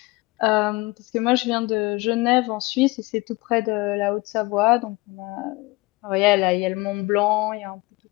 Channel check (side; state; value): right; quieter; 22.9 dB